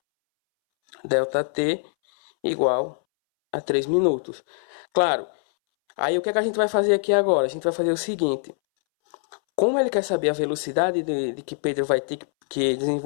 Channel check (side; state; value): right; silent; 63 dB below the other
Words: Delta T igual a 3 minutos. Claro, aí o que é que a gente vai fazer aqui agora? A gente vai fazer o seguinte. Como ele quer saber a velocidade de que Pedro vai ter que